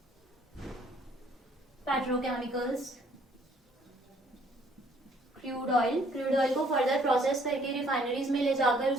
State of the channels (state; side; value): normal; both; correlation 0.62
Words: petrochemicals, crude oil को फर्दर प्रोसेस करके रिफाइनरीज में ले जाकर